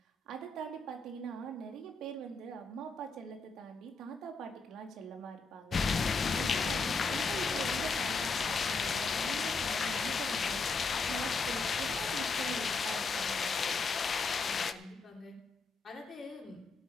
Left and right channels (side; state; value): right; quieter; 4.0 dB